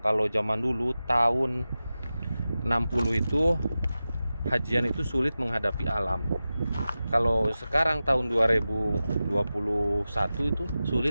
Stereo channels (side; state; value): both; inverted; correlation -0.94